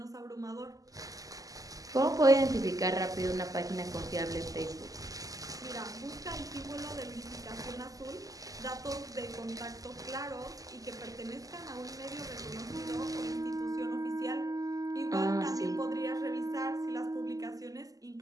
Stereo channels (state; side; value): late; left; 0.17 ms